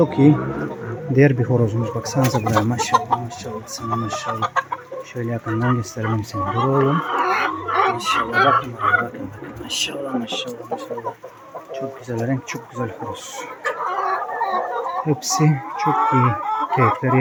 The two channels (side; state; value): both; identical; correlation 1.00